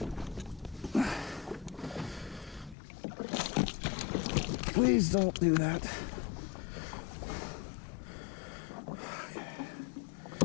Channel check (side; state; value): right; drops out; at 2.8 s